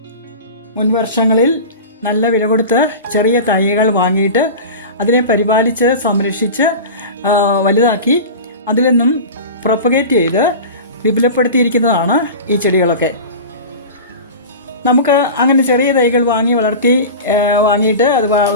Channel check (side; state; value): both; inverted; correlation -0.31